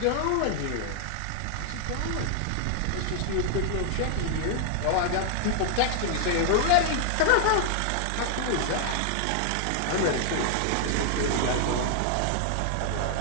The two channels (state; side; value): different; both; correlation 0.00